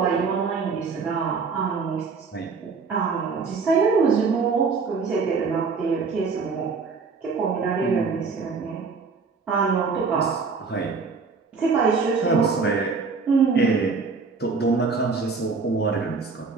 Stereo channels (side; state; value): left; quieter; 4.8 dB